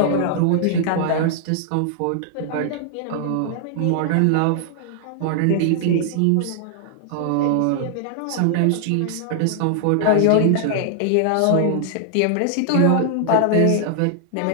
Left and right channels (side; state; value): both; different; correlation -0.01